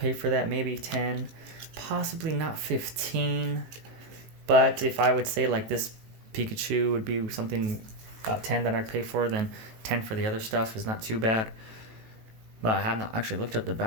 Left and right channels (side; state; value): left; late; 19 ms